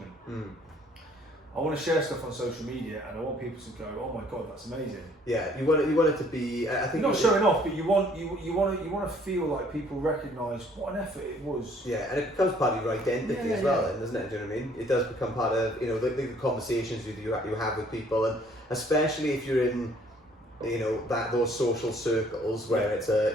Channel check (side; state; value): both; normal; correlation 0.60